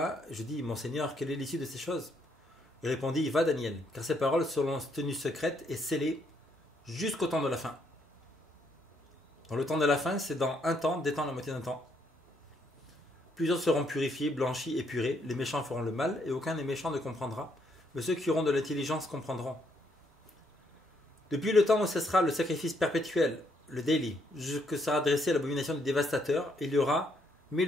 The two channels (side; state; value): both; normal; correlation 0.72